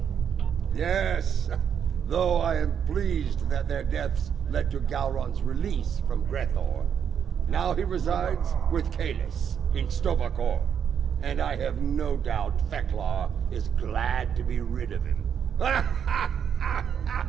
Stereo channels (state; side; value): quieter; left; 8.0 dB